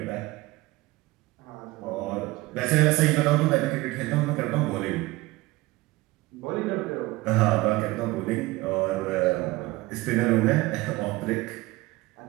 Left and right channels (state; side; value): quieter; left; 20.5 dB